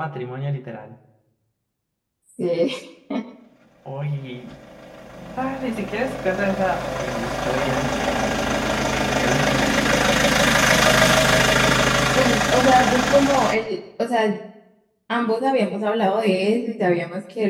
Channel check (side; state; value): both; identical; correlation 1.00